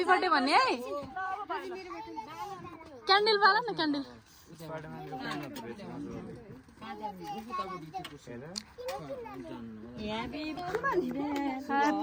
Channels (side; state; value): both; identical; correlation 1.00